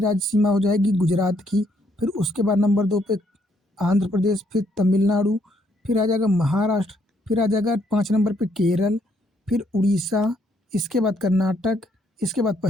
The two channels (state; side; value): normal; both; correlation 0.71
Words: सीमा हो जाएगी गुजरात की, फिर उसके बाद नंबर 2 पे आंध्र प्रदेश, फिर तमिलनाडु, फिर आ जाएगा महाराष्ट्र, फिर आ जाएगा 5 नंबर पे केरल, फिर उड़ीसा, इसके बाद कर्नाटक, इसके बाद